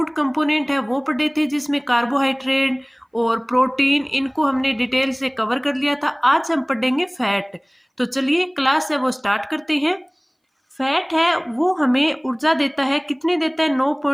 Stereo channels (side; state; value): both; identical; correlation 1.00